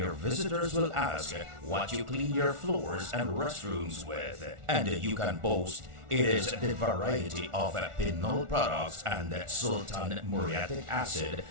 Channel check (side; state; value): left; late; 1.4 ms